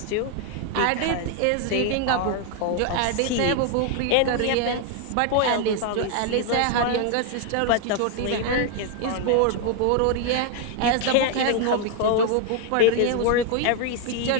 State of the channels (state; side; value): different; both; correlation 0.00